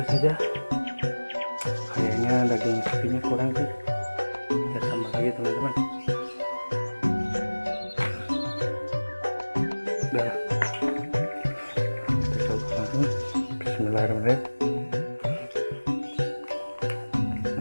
saja. Kayaknya daging sapinya kurang sih. Kita tambah lagi teman-teman. Udah, kita coba langsung. Bismillahirrahmanirrahim.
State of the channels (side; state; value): both; inverted; correlation -1.00